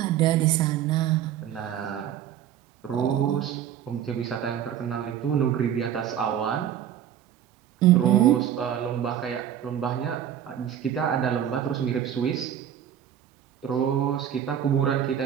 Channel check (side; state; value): left; quieter; 9.9 dB